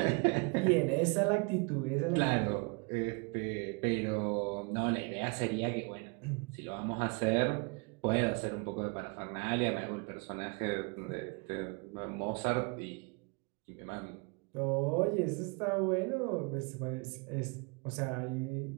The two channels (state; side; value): quieter; left; 31.8 dB